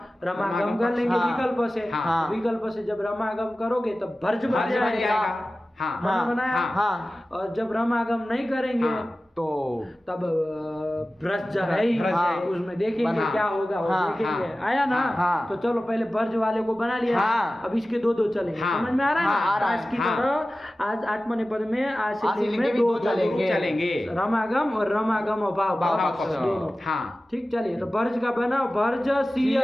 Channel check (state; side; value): normal; both; correlation 0.96